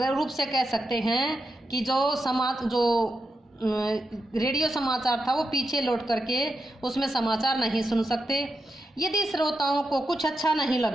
रूप से कह सकते हैं कि जो रेडियो समाचार था वो पीछे लौट करके उसमें समाचार नहीं सुन सकते। यदि श्रोताओं को कुछ अच्छा नहीं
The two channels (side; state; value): both; normal; correlation 0.86